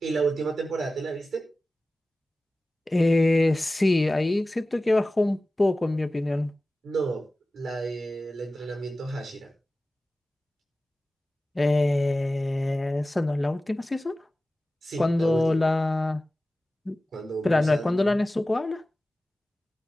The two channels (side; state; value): both; normal; correlation 0.96